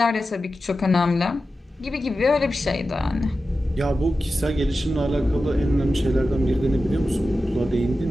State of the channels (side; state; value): both; normal; correlation 0.93